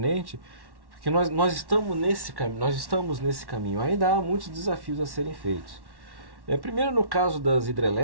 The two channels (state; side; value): late; left; 1.1 ms